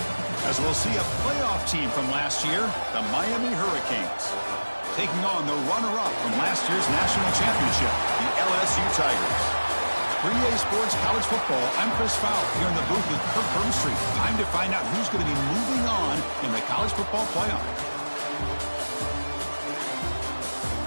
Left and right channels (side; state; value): both; inverted; correlation -1.00